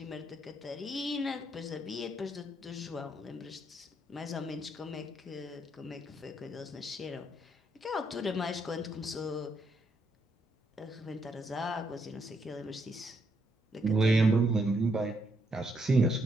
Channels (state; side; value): normal; both; correlation 0.75